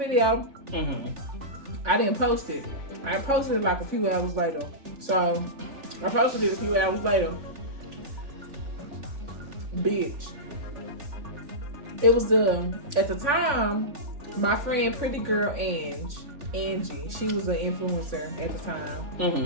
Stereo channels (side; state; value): left; late; 3.6 ms